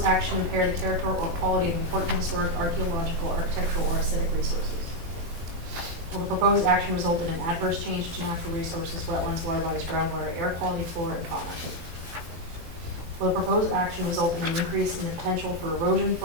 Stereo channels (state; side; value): late; left; 18 ms